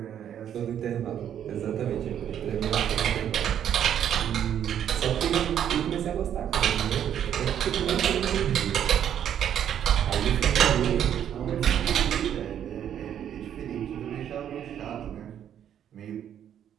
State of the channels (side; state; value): left; quieter; 9.7 dB